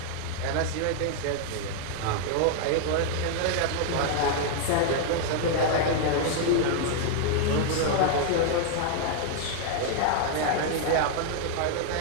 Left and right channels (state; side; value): different; both; correlation 0.00